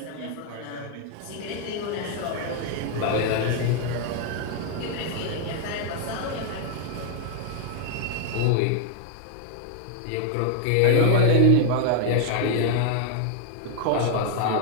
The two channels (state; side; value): different; both; correlation 0.00